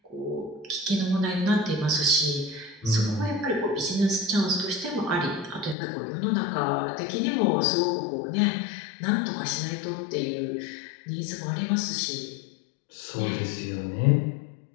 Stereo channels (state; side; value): drops out; right; at 5.8 s